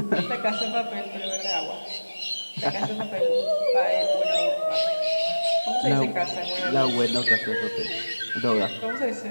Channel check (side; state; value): both; inverted; correlation -1.00